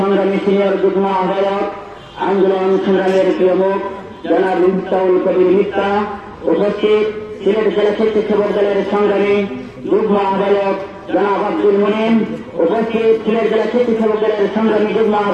সিনিয়র যুগ্ম আহ্বায়ক আন্দোলন সংগ্রামের প্রিয় মুখ জনাব মিফতাহুল কবির মিথ্যা, উপস্থিত সিলেট জেলা স্বেচ্ছাসেবক দলের সংগ্রামী যুগ্ম আহ্বায়ক জনাব আব্দুল মুনিম, উপস্থিত সিলেট জেলা স্বেচ্ছাসেবক দলের সংগ্রামী যুগ্ম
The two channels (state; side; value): identical; both; correlation 1.00